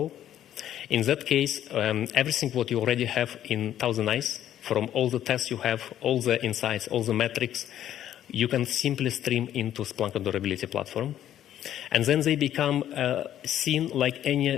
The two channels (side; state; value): right; quieter; 11.4 dB